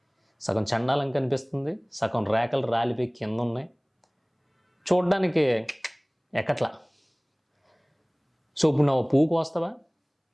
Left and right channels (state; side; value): identical; both; correlation 1.00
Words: సగం చండాలం కనిపిస్తుంది, సగం రేకలు రాలిపోయి కింద ఉన్నాయి, చూడ్డానికి ఎక్కట్లా. సో ఇప్పుడు నువ్వు పువ్వు కోస్తావా?